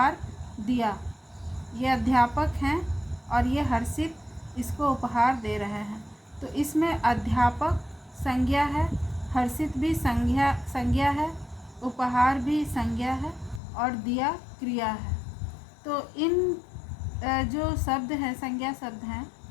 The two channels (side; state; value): right; drops out; at 13.6 s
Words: दिया। ये अध्यापक हैं और ये हर्षित इसको उपहार दे रहे हैं। तो इसमें अध्यापक संज्ञा है, हर्षित भी संज्ञा है, उपहार भी संज्ञा है और दिया क्रिया है। तो इन जो शब्द हैं, संज्ञा शब्द हैं,